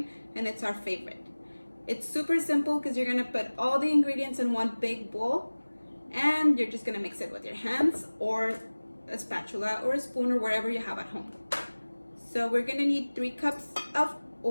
and it's our favorite. It's super simple because you're going to put all the ingredients in one big bowl and you're just going to mix it with your hands or a spatula or a spoon or whatever you have at home. So we're going to need 3 cups of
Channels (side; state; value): both; inverted; correlation -1.00